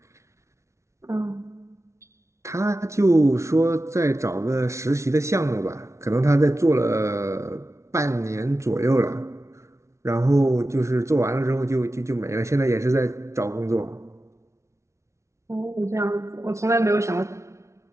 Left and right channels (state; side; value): late; left; 0.14 ms